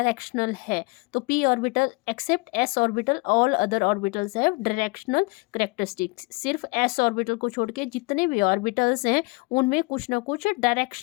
है। तो P orbital except S orbital, all other orbitals have directional characteristics. सिर्फ एस ऑर्बिटल को छोड़ के जितने भी ऑर्बिटल्स हैं उनमें कुछ ना कुछ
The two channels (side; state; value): right; quieter; 27.6 dB